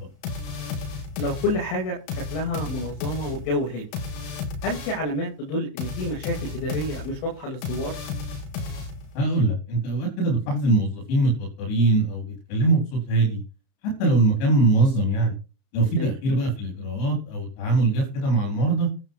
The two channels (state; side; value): late; right; 33 ms